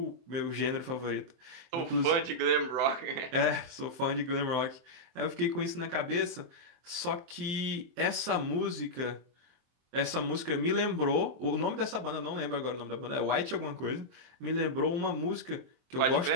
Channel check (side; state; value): left; late; 23 ms